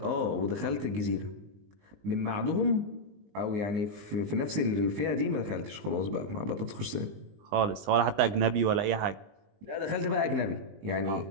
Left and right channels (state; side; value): late; left; 20 ms